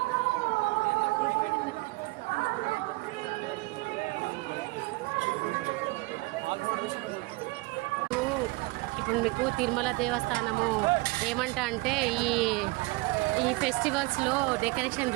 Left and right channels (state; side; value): quieter; left; 24.1 dB